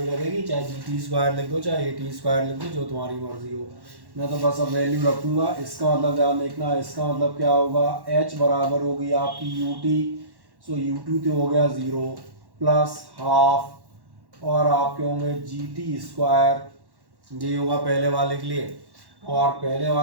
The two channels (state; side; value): late; left; 1.1 ms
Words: लगेगी। चाहे जी टी स्क्वायर लिख दो, चाहे ए टी स्क्वायर लिख दो, जो तुम्हारी मर्जी हो। मैं तो बस अब वैल्यू रखूँगा। इसका मतलब ध्यान देखना, इसका मतलब क्या होगा, h बराबर होगी आपकी u t, so u two तो हो गया 0 प्लस हाफ और आपके होंगे जी टी स्क्वायर, ये होगा पहले वाले के लिए। और पहले